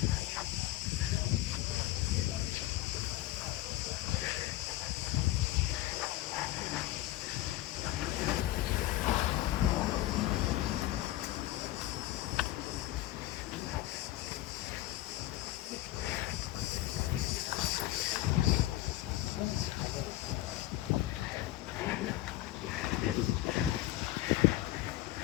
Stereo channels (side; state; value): right; quieter; 15.5 dB